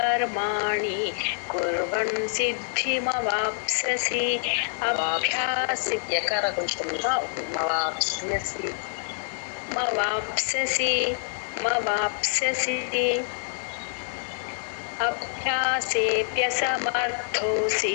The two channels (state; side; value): silent; right; digital silence